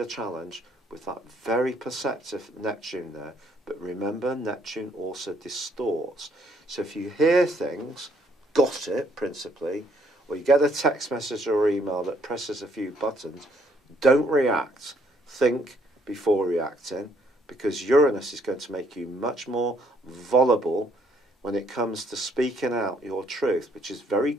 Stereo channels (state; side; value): normal; both; correlation 0.67